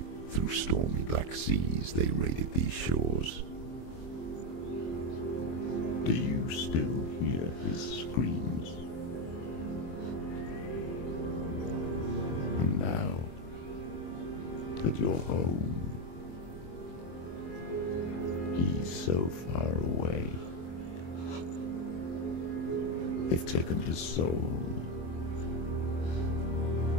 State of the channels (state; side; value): late; right; 23 ms